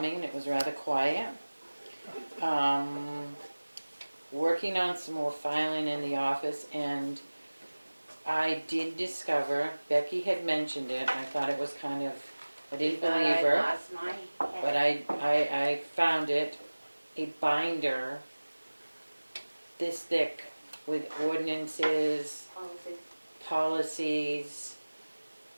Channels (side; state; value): both; inverted; correlation -1.00